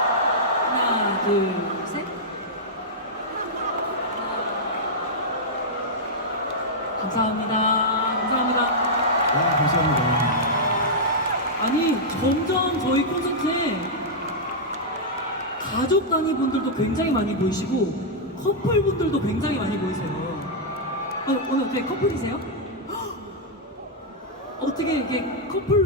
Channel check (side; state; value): both; normal; correlation -0.07